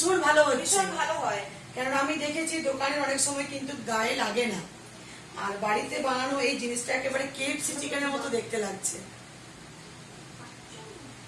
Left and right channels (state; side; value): identical; both; correlation 1.00